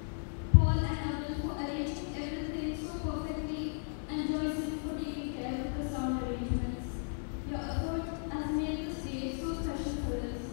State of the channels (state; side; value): silent; right; digital silence